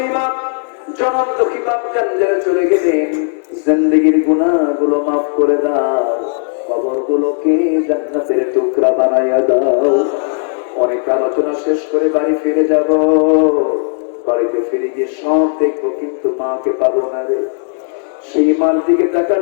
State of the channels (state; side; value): silent; right; 66 dB below the other